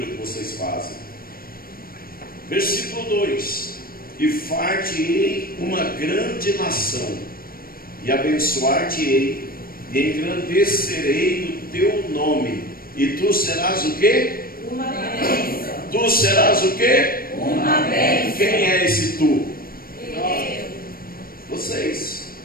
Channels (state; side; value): late; right; 0.43 ms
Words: que vocês fazem. Versículo 2: e far-te-ei uma grande nação, e abençoar-te-ei, e engrandecerei o teu nome, e tu serás o quê? Uma bênção. Tu serás o quê? Uma bênção. Quem é esse tu? Eu. Vocês,